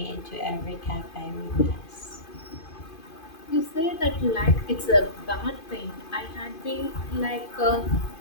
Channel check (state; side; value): late; right; 2.5 ms